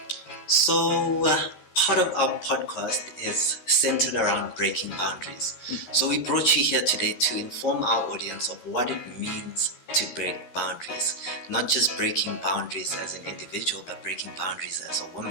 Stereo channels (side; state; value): right; late; 13 ms